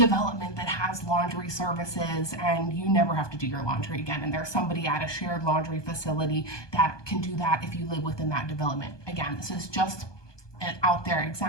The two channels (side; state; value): right; late; 1.2 ms